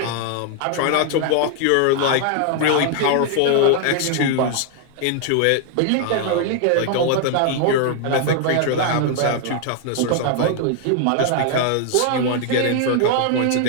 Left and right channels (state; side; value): different; both; correlation 0.00